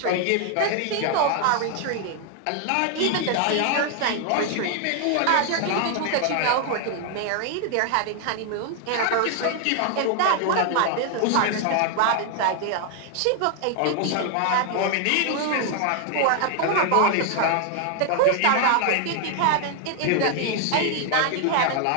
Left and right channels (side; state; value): both; different; correlation 0.00